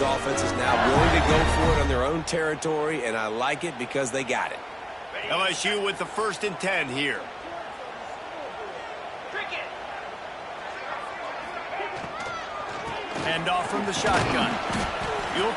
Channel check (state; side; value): identical; both; correlation 1.00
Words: offenses now, willing to go for it on their own territory, and I like it because they got it. LSU with the 1st and 10 here. Hand off from the shotgun. You'll